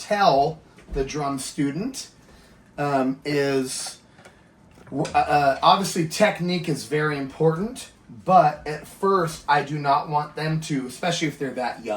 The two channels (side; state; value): both; identical; correlation 1.00